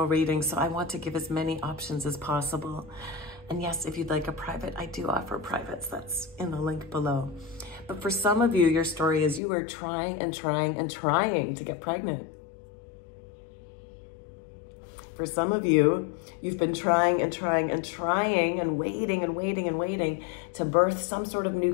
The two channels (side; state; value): right; drops out; at 9.4 s